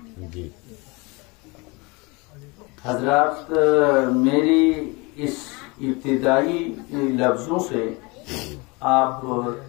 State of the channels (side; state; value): right; quieter; 26.8 dB